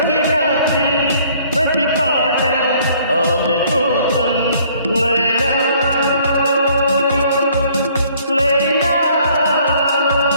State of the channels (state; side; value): inverted; both; correlation -0.60